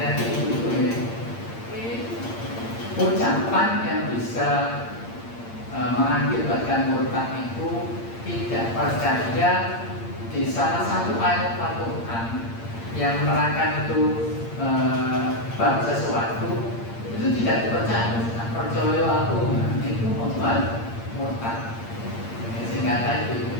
ibu-ibu ini. Ucapan yang bisa mengakibatkan murtad itu tidak percaya di salah satu ayat Al-Quran yang menerangkan itu bab sesuatu itu tidak dipercaya. Percaya aku itu membuat murtad. Sehingga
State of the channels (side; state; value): right; late; 8.7 ms